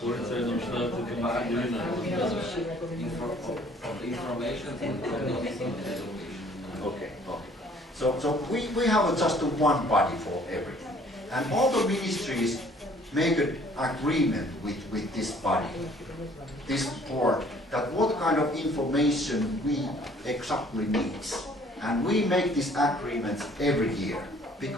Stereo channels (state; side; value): normal; both; correlation 0.57